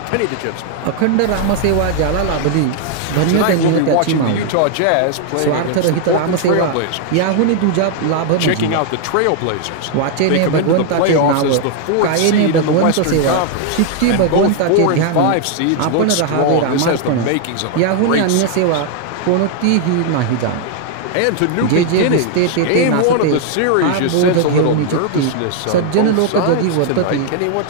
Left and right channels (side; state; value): both; different; correlation 0.00